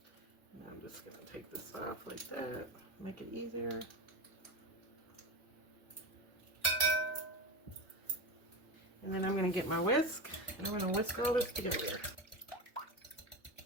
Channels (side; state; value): both; normal; correlation 0.21